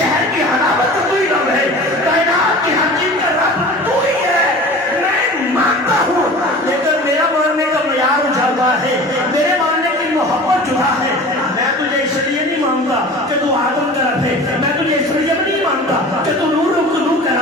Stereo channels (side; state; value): both; normal; correlation 0.39